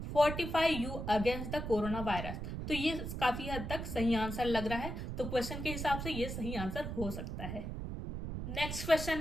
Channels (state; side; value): noise; right; rumble, 5 dB below the sound